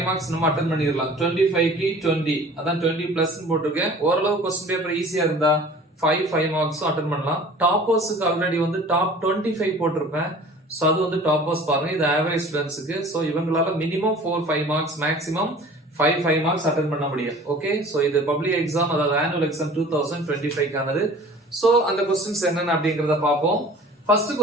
மார்க்ஸ் நம்ம அட்டெண்ட் பண்ணிரலாம். 25 க்கு 20 அதான் 20 பிளஸ் போட்டுருக்கேன். ஓரளவு क्वेश्चन பேப்பர் ஈஸியா இருந்தா 5 மார்க்ஸும் அட்டெண்ட் பண்ணலாம். டாப்பர்ஸ்க்கு ஆல்ரெடி வந்து டாப் 25 போட்டிருப்பேன். ஸோ அது வந்து டாப்பர்ஸ் பாருங்க, இது ஆவரேஜ் ஸ்டூடெண்ட்ஸுக்கு. ஸோ இவங்களால minimum 4 5 marks maximum 5 marks attend பண்ண முடியும். ஓகே, ஸோ இது பப்ளிக் எக்ஸாம், அதாவது ஆனுவல் எக்ஸாம் 2025க்கானது. ஸோ அந்த கொஸ்டின்ஸ் என்னென்ன அப்படிங்கிறத பார்ப்போம். First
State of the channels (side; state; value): both; normal; correlation 0.45